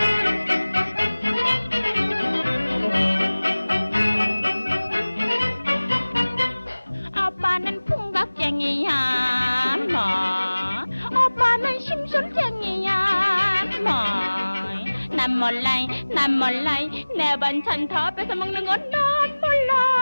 오빠는 풍각쟁이야 뭐 오빠는 심술쟁이야 뭐 난 몰라 내 반찬 다 뺏어 먹는 건 난 몰라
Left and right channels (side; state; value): both; inverted; correlation -1.00